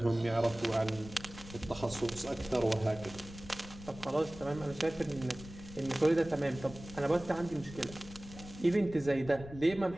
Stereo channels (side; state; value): left; noise; rumble, 15 dB below the sound